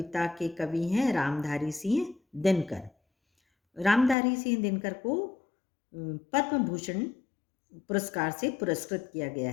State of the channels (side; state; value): right; drops out; at 4.2 s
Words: के कवि हैं रामधारी सिंह दिनकर। रामधारी सिंह दिनकर को पद्म भूषण पुरस्कार से पुरस्कृत किया गया